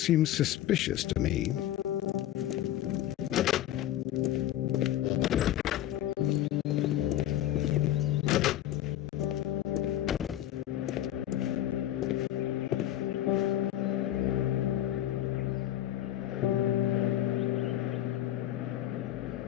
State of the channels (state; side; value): quieter; right; 12.8 dB